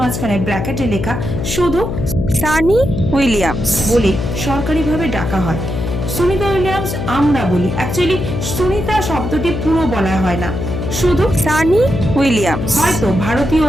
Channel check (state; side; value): noise; left; hum, 4 dB below the sound